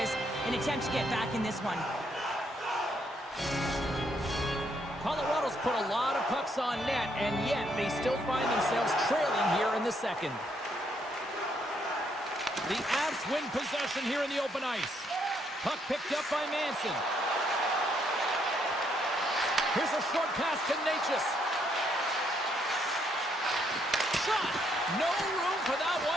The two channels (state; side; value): normal; both; correlation 0.73